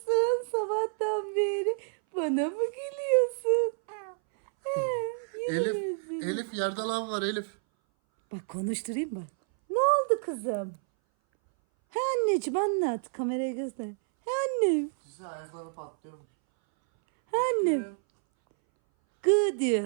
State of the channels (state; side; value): silent; left; 59 dB below the other